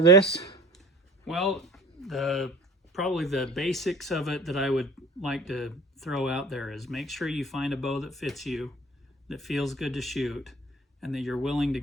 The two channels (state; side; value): normal; both; correlation 0.45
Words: this? Well, probably the basics of it that I would like to throw out there is make sure you find a bow that fits you, that feels good to shoot, and that you're willing to